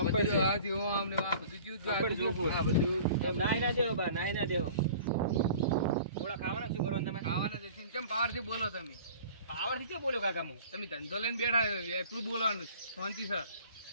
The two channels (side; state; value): both; inverted; correlation -0.45